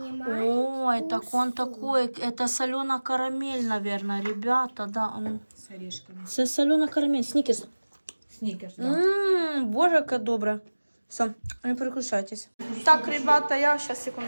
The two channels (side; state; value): both; inverted; correlation -1.00